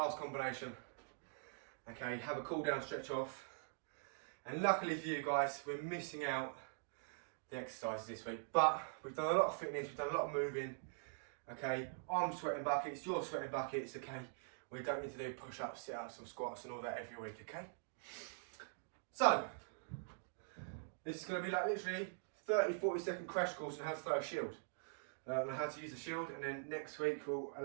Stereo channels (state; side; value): silent; left; digital silence